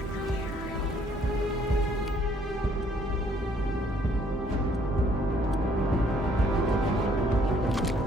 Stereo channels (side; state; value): both; normal; correlation 0.64